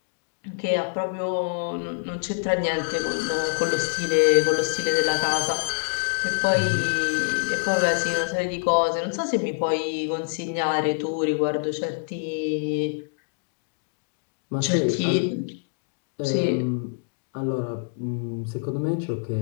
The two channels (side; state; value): right; silent; digital silence